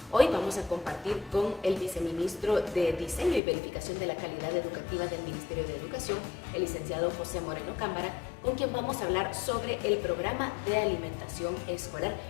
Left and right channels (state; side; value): drops out; right; at 3.4 s